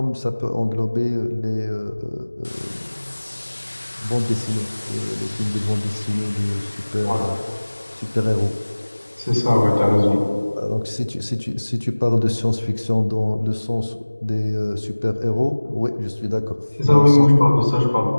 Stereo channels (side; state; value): both; inverted; correlation -1.00